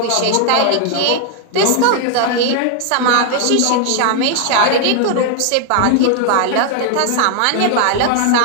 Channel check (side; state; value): both; different; correlation 0.00